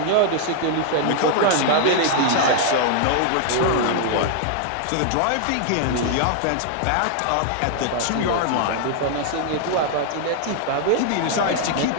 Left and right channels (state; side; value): different; both; correlation 0.00